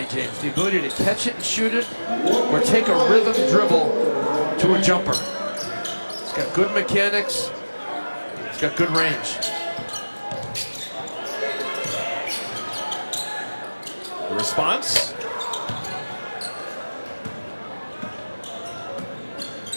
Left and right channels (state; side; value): inverted; both; correlation -1.00